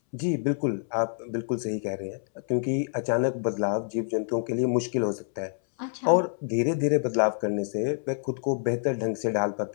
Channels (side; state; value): right; silent; 60 dB below the other